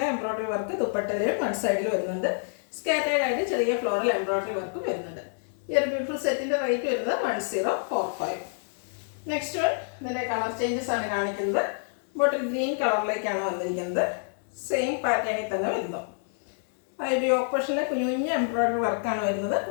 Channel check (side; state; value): right; silent; digital silence